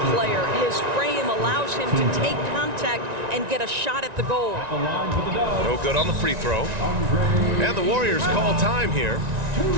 player. His frame allows him to take contact and get a shot at the goal. No good on the free throw. And the Warriors call time here.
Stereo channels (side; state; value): left; late; 1.9 ms